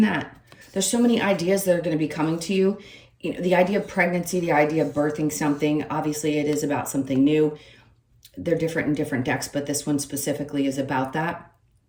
that there's so many ideas that are going to be coming to you. You know, the idea of pregnancy, the idea of birthing something, obviously it is about something new. They're different in different decks, but this one specifically is about that.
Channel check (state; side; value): identical; both; correlation 1.00